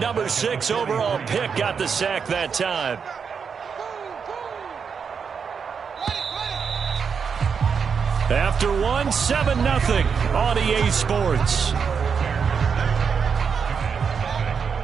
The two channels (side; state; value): left; quieter; 6.3 dB